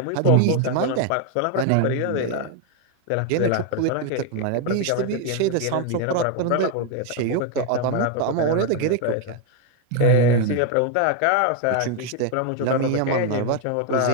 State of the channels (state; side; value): different; both; correlation 0.01